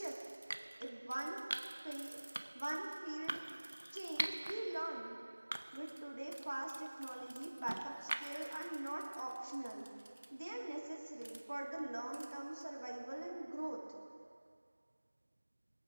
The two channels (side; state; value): both; inverted; correlation -1.00